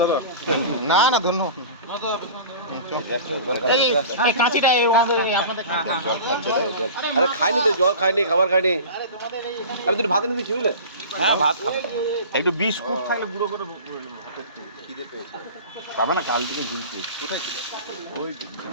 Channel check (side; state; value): both; inverted; correlation -0.36